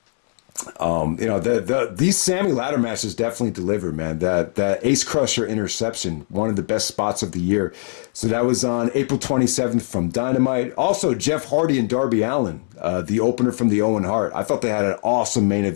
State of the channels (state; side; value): silent; right; digital silence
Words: These Sammy ladder matches definitely deliver, man. That Ace Crusher interception, one of the best spots of the year. So that was on April 27th from Dynamite. Also, Jeff Hardy and Darby Allin, the opener from the Owen Hart. I thought they had an awesome main